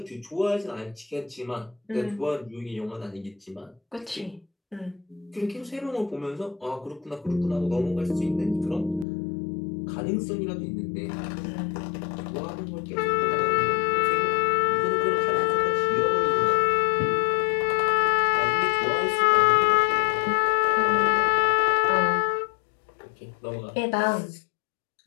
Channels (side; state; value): right; drops out; at 9.1 s